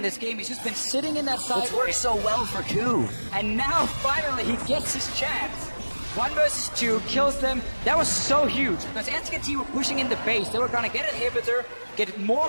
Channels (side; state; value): both; inverted; correlation -1.00